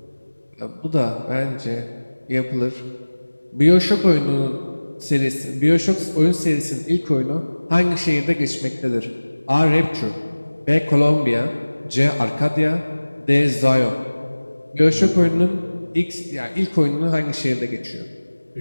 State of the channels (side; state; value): both; inverted; correlation -1.00